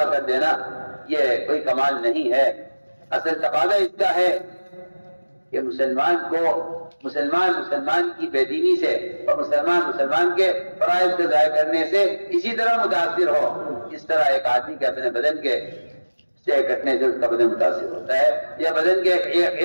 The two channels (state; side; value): inverted; both; correlation -1.00